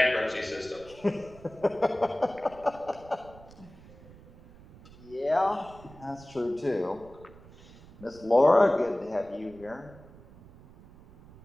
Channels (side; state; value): right; noise; rumble, 21 dB below the sound